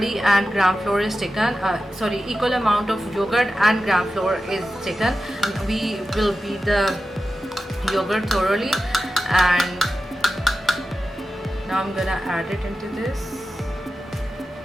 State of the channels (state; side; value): normal; both; correlation 0.92